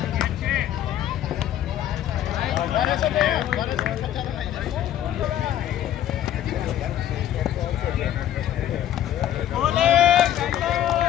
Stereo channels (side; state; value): right; quieter; 11.5 dB